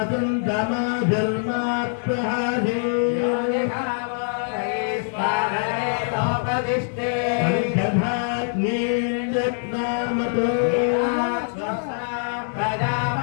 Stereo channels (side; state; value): right; silent; digital silence